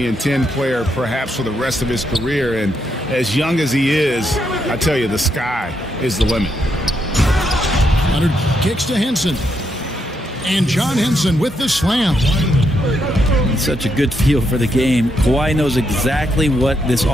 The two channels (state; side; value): normal; both; correlation 0.79